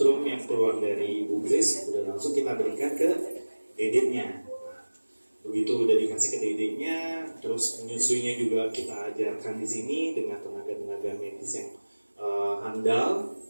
yang keluar dari Ibu Grace udah langsung kita berikan ke dedeknya. Nah, begitu udah dikasih ke dedeknya, terus menyusuinya juga kita ajarkan di sini dengan tenaga-tenaga medis yang handal.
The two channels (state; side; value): inverted; both; correlation -1.00